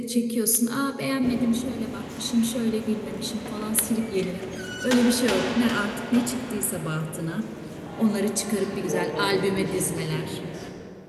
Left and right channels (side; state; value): both; identical; correlation 1.00